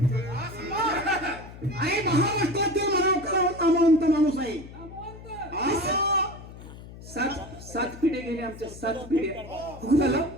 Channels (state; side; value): noise; left; hum, 15 dB below the sound